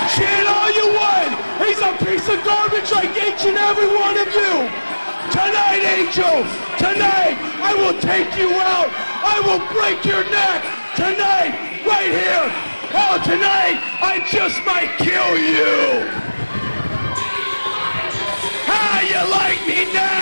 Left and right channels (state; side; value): inverted; both; correlation -1.00